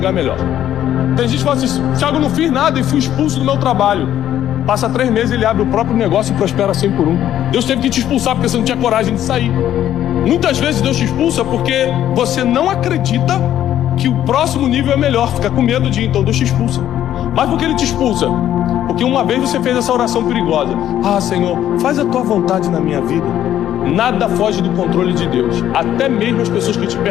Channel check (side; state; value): right; quieter; 11.5 dB